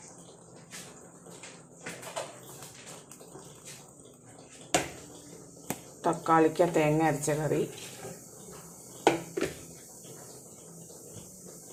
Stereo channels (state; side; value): identical; both; correlation 1.00